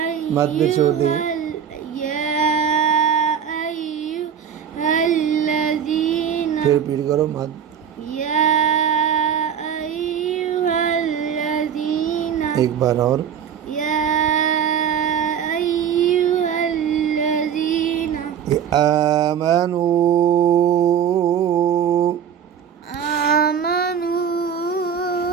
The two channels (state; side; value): quieter; left; 8.3 dB